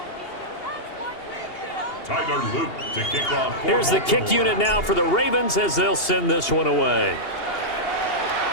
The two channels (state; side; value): late; right; 2.8 ms